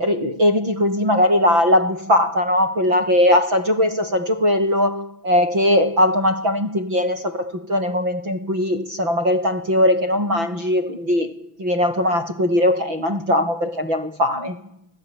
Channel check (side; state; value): left; late; 6.0 ms